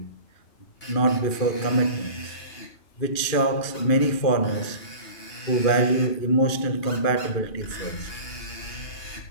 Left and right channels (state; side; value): late; right; 2.4 ms